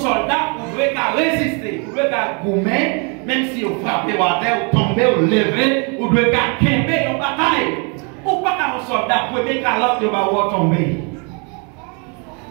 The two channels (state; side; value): quieter; left; 35.4 dB